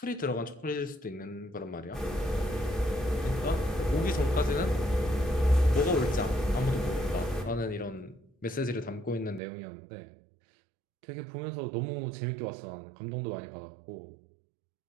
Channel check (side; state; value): left; drops out; at 9.4 s